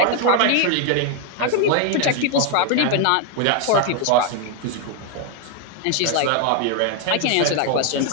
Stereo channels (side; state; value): both; different; correlation 0.01